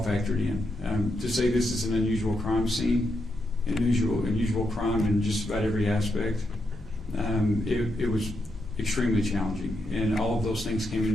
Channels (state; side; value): normal; both; correlation 0.82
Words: factored in. To say this is an unusual crime scene, unusual crime in just about every aspect, it was extremely challenging. And all of those things came